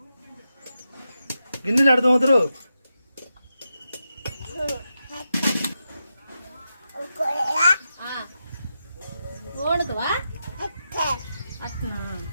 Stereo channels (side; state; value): both; inverted; correlation -0.88